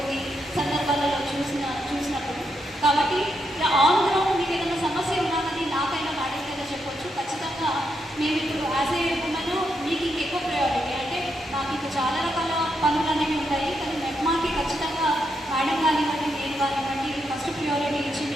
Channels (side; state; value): both; normal; correlation 0.81